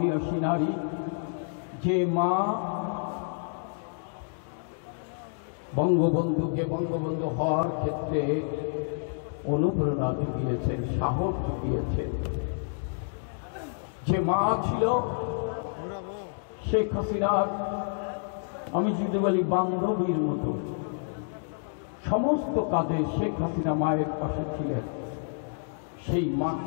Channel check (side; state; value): right; silent; digital silence